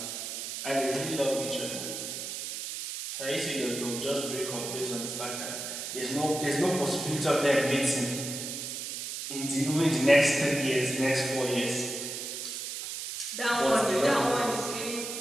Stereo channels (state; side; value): noise; right; hiss, 6 dB below the sound